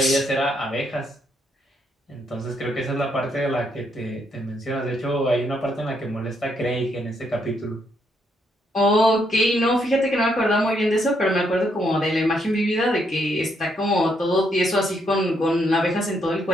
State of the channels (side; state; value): both; normal; correlation 0.75